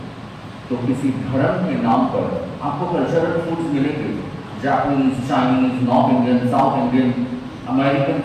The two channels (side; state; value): both; identical; correlation 1.00